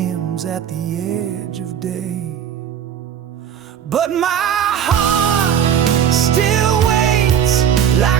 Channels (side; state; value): left; quieter; 8.9 dB